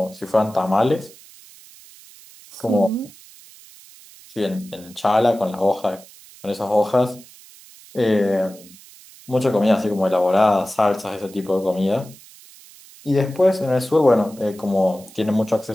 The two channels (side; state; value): right; noise; hiss, 22 dB below the sound